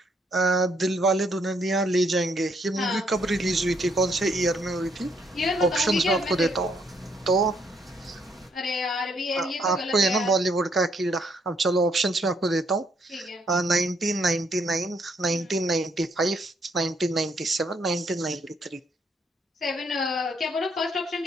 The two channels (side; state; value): both; normal; correlation 0.71